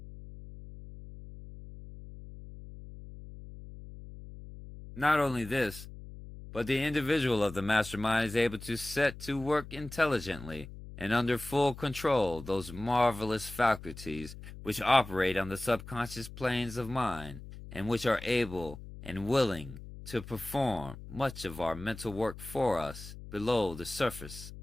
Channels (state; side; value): noise; left; hum, 14 dB below the sound